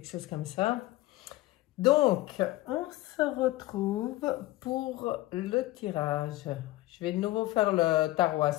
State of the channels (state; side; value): quieter; right; 17.8 dB